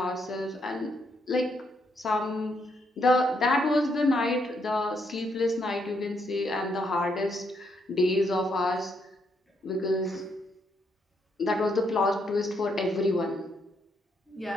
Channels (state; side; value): normal; both; correlation 0.76